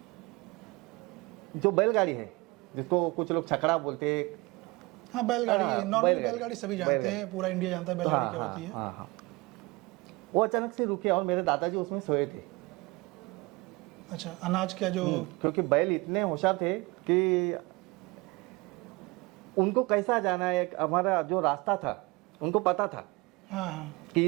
जो बैलगाड़ी है, जिसको कुछ लोग छकड़ा बोलते हैं। हाँ, बैलगाड़ी, नॉर्मली बैलगाड़ी, बैलगाड़ी सभी जानते हैं, पूरा इंडिया जानता है बैलगाड़ी क्या होती है। हाँ। वो अचानक से रुके और मेरे दादाजी उसमें सोए थे। अच्छा, अनाज क्या जो? क्योंकि बैल इतने होशियार थे कि उनको कैसा जाना है, हमारा जो रास्ता था उनको पता था। हाँ कि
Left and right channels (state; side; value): quieter; left; 24.3 dB